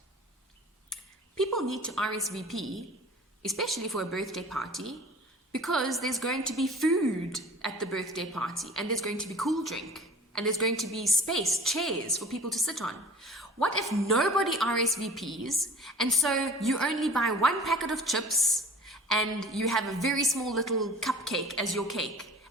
People need to RSVP, especially for a birthday party, because there's going to be food at the birthday party, and there's going to be cool drink, and there's going to be space, chairs for people to sit on. What if nobody RSVPs, and so you only buy one packet of chips, and you have a very small little cupcake as your cake,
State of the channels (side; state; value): both; normal; correlation 0.43